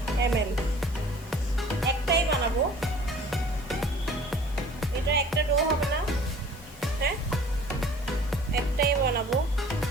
ml। একটাই বানাবো, এটা একটা ডো হবে না, হ্যাঁ একটাই বানাবো।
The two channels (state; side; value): normal; both; correlation 0.49